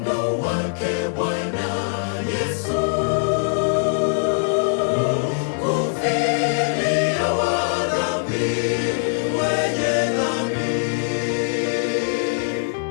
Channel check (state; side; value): silent; right; digital silence